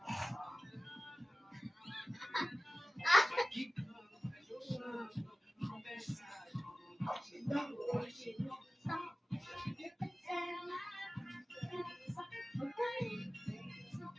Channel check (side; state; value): both; normal; correlation 0.96